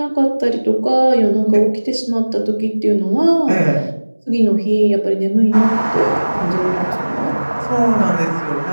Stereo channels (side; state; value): both; inverted; correlation -1.00